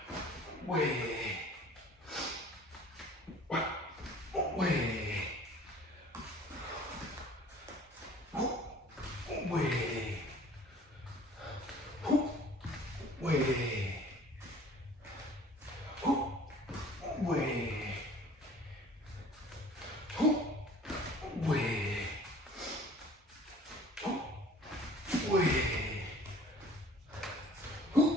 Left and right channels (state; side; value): normal; both; correlation 0.49